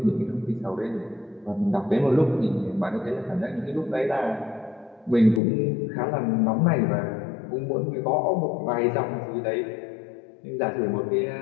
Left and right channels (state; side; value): drops out; right; at 5.4 s